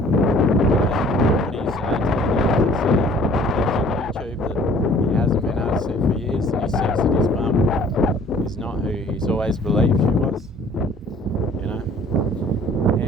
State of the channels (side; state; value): both; normal; correlation 0.53